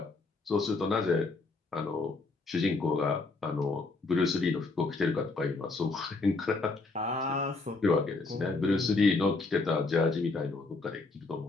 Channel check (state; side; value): quieter; right; 3.6 dB